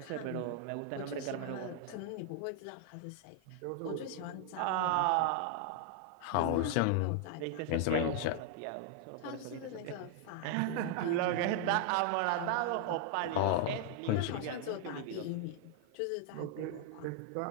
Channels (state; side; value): different; both; correlation 0.00